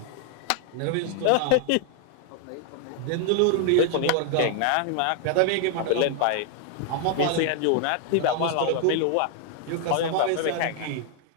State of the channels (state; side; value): different; both; correlation 0.00